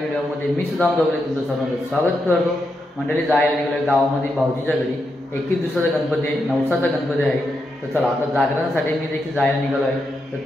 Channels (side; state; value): both; normal; correlation 0.84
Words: मी सुदाम दोगले तुमचं सर्वांचं स्वागत करतो। मंडळी जायला निघालोय गावामध्ये भाऊजीच्या घरी। 21 दिवसाचा गणपती आहे, नवसाचा गणपती आहे। तर चला आता जागरणासाठी मी देखील जायला निघालो आहे, तर